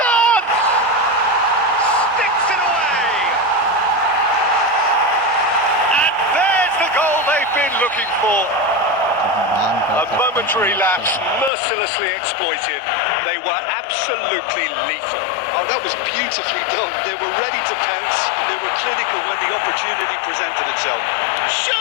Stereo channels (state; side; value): drops out; right; at 11.5 s